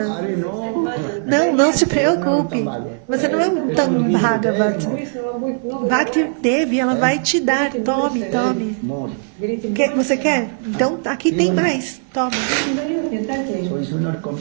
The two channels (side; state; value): left; silent; digital silence